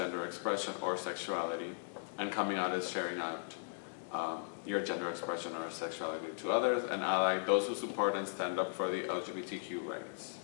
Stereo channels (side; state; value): right; silent; digital silence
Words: expression or sexuality. And coming out is sharing out your gender expression or sexuality to others. And ally, those who support and stand up for the LGBTQ rights.